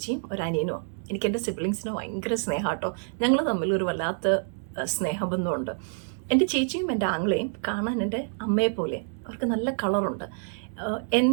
ഒരു അനിയനുമാണ്. എനിക്ക് എൻ്റെ സിബ്ലിങ്സിന് ഭയങ്കര സ്നേഹമാട്ടോ. ഞങ്ങൾ തമ്മിൽ ഒരു വല്ലാത്ത സ്നേഹബന്ധമുണ്ട്. എൻ്റെ ചേച്ചിയും എൻ്റെ ആങ്ങളെയും കാണാൻ എൻ്റെ അമ്മയെ പോലെ. അവർക്ക് നല്ല കളറുണ്ട്.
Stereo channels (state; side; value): silent; left; 60 dB below the other